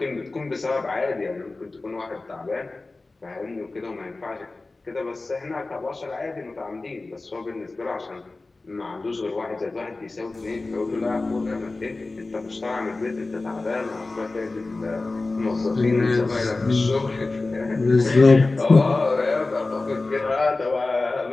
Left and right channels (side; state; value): right; quieter; 3.3 dB